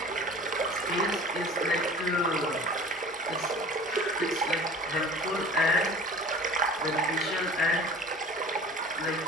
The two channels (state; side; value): normal; both; correlation 0.42